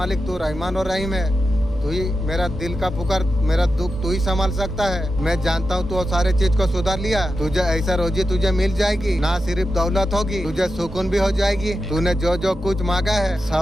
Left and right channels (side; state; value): both; normal; correlation 0.90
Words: तू रहमान और रहीम है। तू ही मेरा दिल का पुकार, मेरा दुख तू ही संभाल सकता है। मैं जानता हूँ तू सारे चीज को सुधार लिया। तुझे ऐसा रोजी तुझे मिल जाएगी, ना सिर्फ दौलत होगी, तुझे सुकून भी हो जाएगी। तूने जो जो कुछ मांगा है